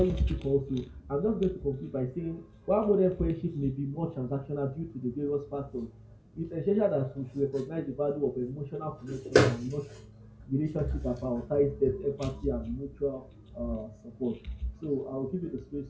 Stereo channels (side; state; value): both; identical; correlation 1.00